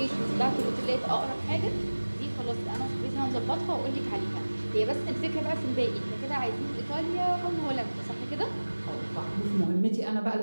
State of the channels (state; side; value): inverted; both; correlation -1.00